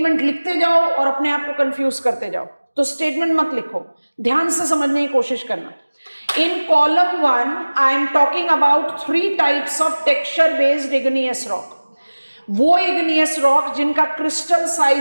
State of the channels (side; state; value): both; inverted; correlation -1.00